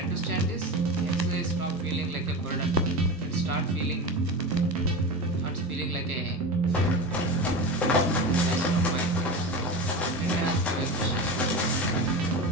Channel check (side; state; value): both; normal; correlation 0.25